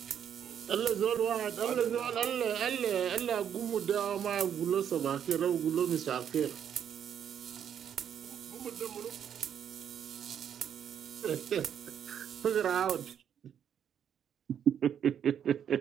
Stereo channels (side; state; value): left; quieter; 8.9 dB